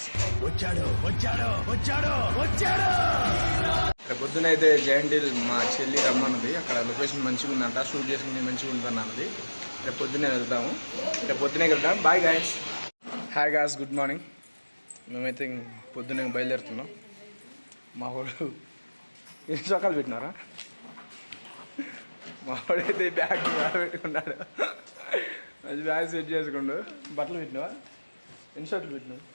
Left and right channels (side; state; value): both; inverted; correlation -1.00